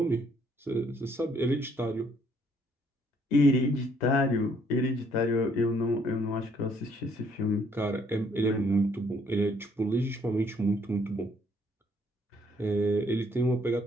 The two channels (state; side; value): normal; both; correlation 0.66